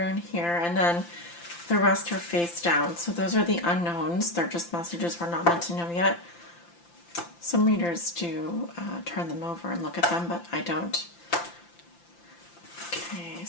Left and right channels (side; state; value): right; late; 5.8 ms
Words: here, and then the rest are face down. So those are the unknowns. They're just messages we're not meant to know yet. Some readers do turn them over and look at them, but I don't. Okay,